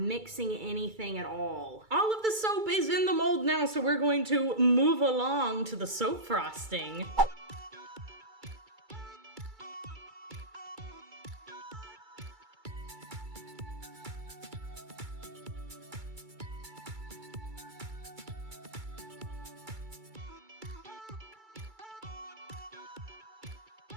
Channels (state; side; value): late; left; 2.3 ms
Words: anything at all. All of the soap is in the mold now, so we're going to move along to the soap frosting.